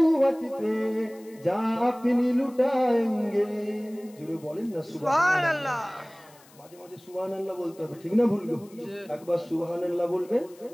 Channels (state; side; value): noise; left; hiss, 26 dB below the sound